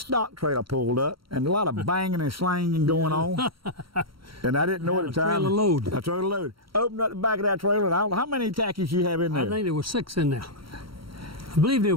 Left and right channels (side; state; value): left; late; 0.74 ms